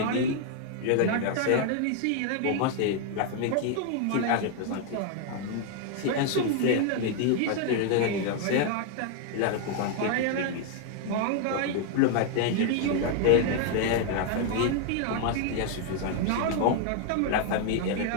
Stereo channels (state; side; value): different; both; correlation 0.00